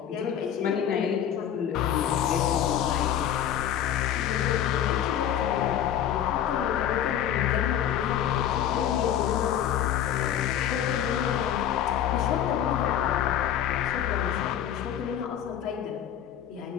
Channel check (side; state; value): right; quieter; 10.2 dB